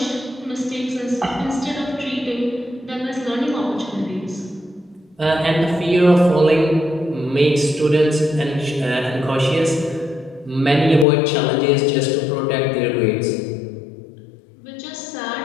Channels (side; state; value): right; drops out; at 11.1 s